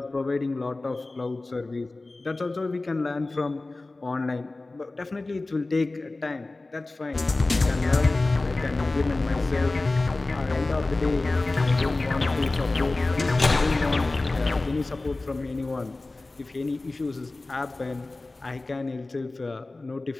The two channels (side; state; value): right; quieter; 3.1 dB